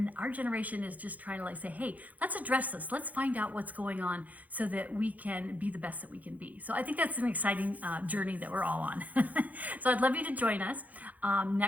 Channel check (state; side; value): late; left; 0.077 ms